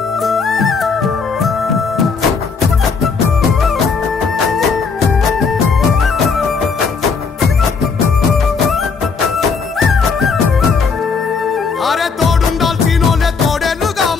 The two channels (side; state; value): right; quieter; 5.2 dB